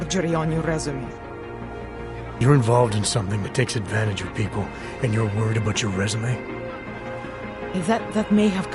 on your resume. You're involved in something that takes advantage of people, and you're worried about your resume? That may have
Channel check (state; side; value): identical; both; correlation 1.00